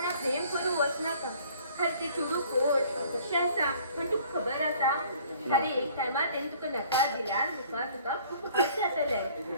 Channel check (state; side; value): inverted; both; correlation -0.54